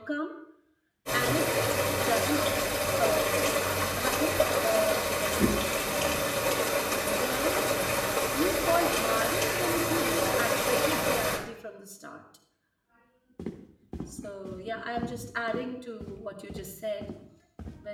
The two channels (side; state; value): both; identical; correlation 1.00